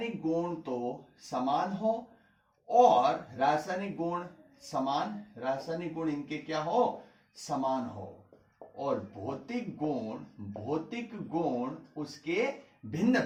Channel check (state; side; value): identical; both; correlation 1.00